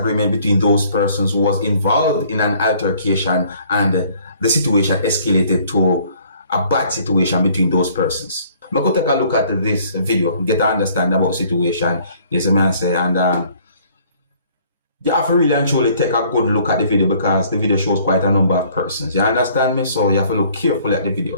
between those persons who was involved in an altercation, and the situation escalated to a bad situation between those persons. I'm going to take a look at this video, get to understand about the situation, yes, I say, and you have to really and truly take a good look at the video, because the video shows quite a number of persons. You understand me? So you have to look carefully at the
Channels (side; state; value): both; inverted; correlation -0.59